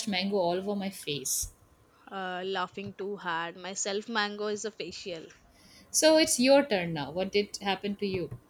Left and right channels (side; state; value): both; identical; correlation 1.00